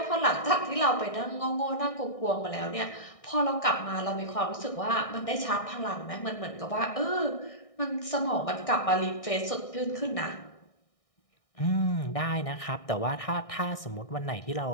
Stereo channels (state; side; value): late; right; 1.6 ms